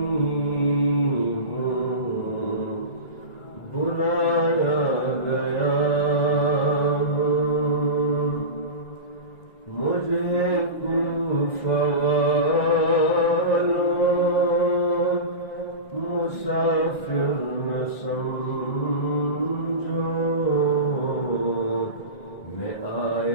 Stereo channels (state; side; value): late; right; 1.7 ms